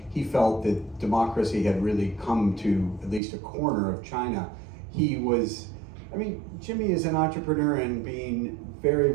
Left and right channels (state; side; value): drops out; left; at 3.2 s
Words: he felt that democracy had really come to at least a corner of China. Jimmy is an entrepreneur and being very,